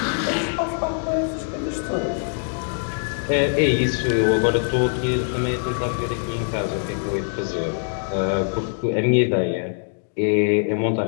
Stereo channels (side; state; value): right; silent; digital silence